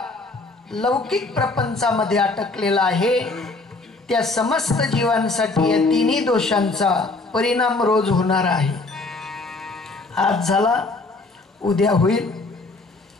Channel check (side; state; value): right; quieter; 3.4 dB